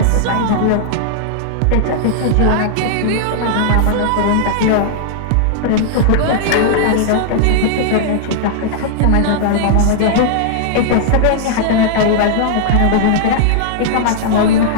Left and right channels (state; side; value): different; both; correlation -0.01